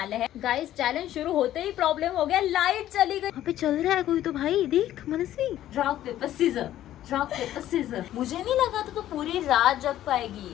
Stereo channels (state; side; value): quieter; right; 12.8 dB